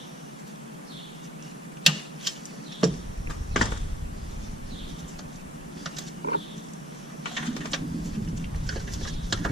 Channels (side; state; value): both; normal; correlation 0.62